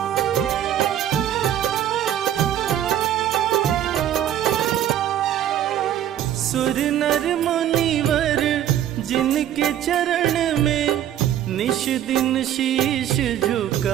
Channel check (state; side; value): quieter; left; 11.1 dB